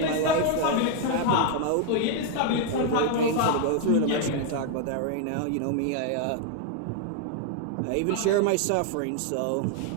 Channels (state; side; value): different; both; correlation 0.00